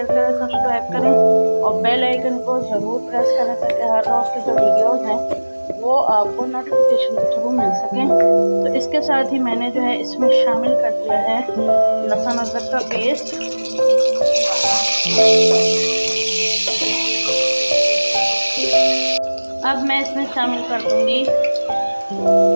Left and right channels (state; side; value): inverted; both; correlation -1.00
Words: करें, सब्सक्राइब करें और बेल आइकन को ज़रूर प्रेस करें ताकि हर रोज़ की जो वीडियोज़ हैं वो आपको नोटिफिकेशन के थ्रू मिल सकें। तो इसके साथ ही मैंने जो है इसमें शामिल कर दिया है लहसुन अदरक का पेस्ट। अब मैं इसमें शामिल कर दूंगी